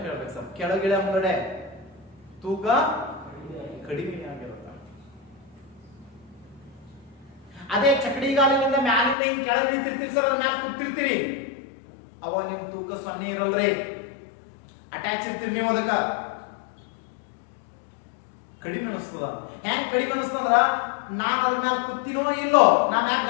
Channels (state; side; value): drops out; right; at 9.2 s